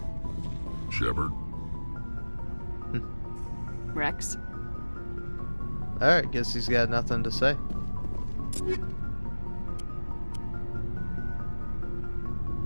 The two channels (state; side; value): inverted; both; correlation -1.00